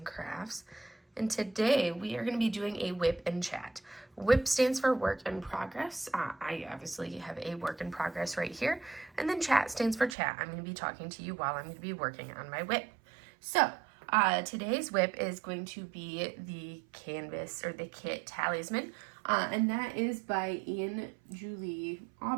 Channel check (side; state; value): left; drops out; at 10.2 s